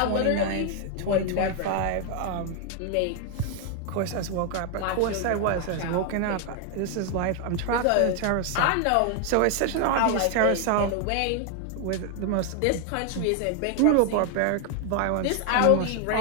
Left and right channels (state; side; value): different; both; correlation 0.00